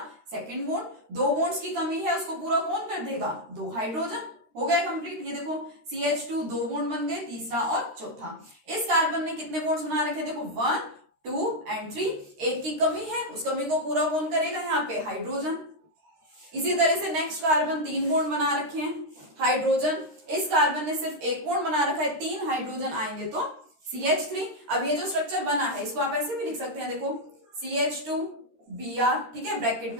सेकंड बॉन्ड। 2 बॉन्ड्स की कमी है, उसको पूरा कौन कर देगा, 2 हाइड्रोजन। हो गया कंप्लीट। ये देखो CH2 2 बॉन्ड बन गए, तीसरा और चौथा। इस कार्बन ने कितने बॉन्ड्स बना रखे, देखो 1 2 एंड 3, एक की कमी है, उस कमी को पूरा कौन करेगा, यहाँ पे हाइड्रोजन। इसी तरह से नेक्स्ट कार्बन 3 बॉन्ड बना रखे हैं, हाइड्रोजन। इस कार्बन ने सिर्फ 1 बॉन्ड बना रखा है, 3 हाइड्रोजन आएंगे तो CH3। अब ये जो स्ट्रक्चर बना है इसको आप ऐसे भी लिख सकते हैं, देखो CH2 Br, ठीक है, ब्रैकेट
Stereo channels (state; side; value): late; left; 13 ms